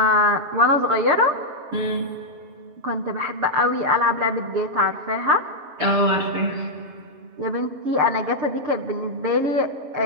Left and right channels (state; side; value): late; left; 7.4 ms